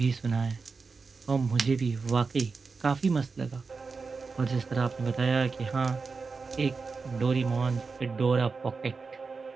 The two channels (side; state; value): left; quieter; 4.6 dB